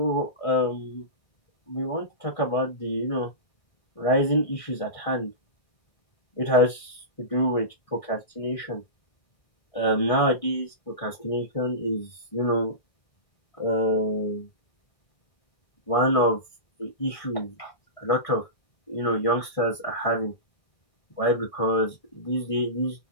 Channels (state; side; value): late; right; 1.6 ms